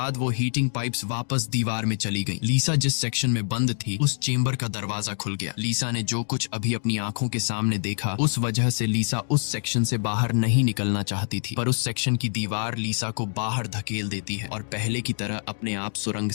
वो हीटिंग पाइप्स वापस दीवार में चली गई। लीसा जिस सेक्शन में बंद थी उस चेम्बर का दरवाजा खुल गया। लीसा ने जो कुछ अभी अपनी आंखों के सामने देखा उस वजह से लीसा उस सेक्शन से बाहर नहीं निकलना चाहती थी, पर उस सेक्शन की दीवार लीसा को बाहर धकेल देती है और पहले की तरह अपने आप सुरंग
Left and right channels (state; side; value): silent; right; digital silence